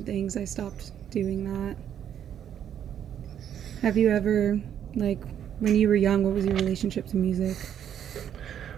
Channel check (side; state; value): left; quieter; 9.5 dB